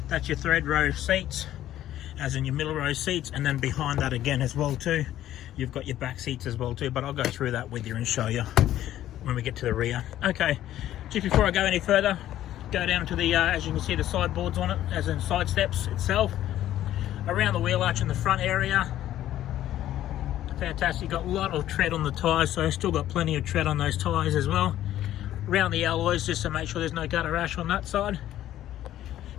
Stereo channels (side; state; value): right; quieter; 12.8 dB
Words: That's your third row seats, as in your middle row seats, and then behind that again as well too, you've got your back seats as well too, but I'll go through that with you and show you when we get to the rear. Okay, just before I go any further, go down to the as you can see the sideboards on it, as in side steps itself. Around the wheel arch in the front area, fantastic. You've got a lot of tread on the tyres, so still got plenty of tread on those tyres as well. Around the alloys, just to make sure there's no gutter rash on that side.